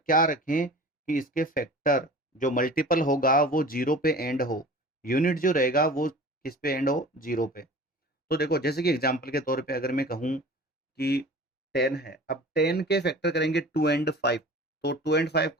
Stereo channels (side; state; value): both; normal; correlation 0.40